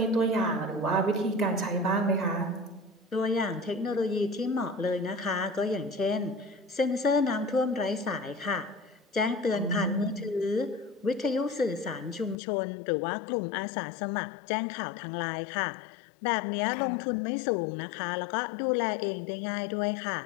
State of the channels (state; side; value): drops out; right; at 12.4 s